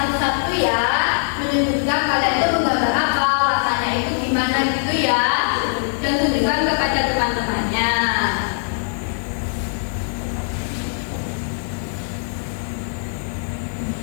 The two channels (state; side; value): silent; right; 58 dB below the other